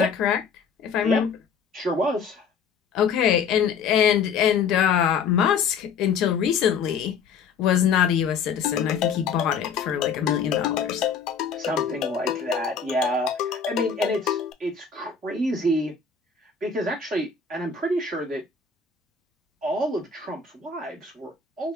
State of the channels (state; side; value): quieter; right; 6.1 dB